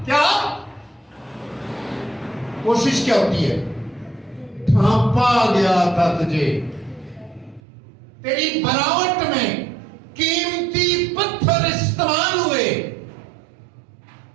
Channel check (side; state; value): left; drops out; at 7.6 s